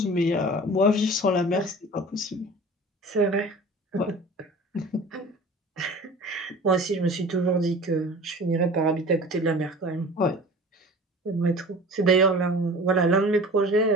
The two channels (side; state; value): both; normal; correlation 0.41